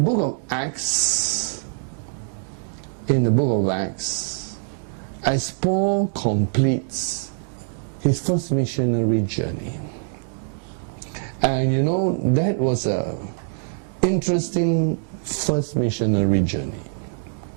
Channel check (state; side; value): silent; left; digital silence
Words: of Acts, as Paul completes his first missionary journey. And you know, that was a interesting first missionary journey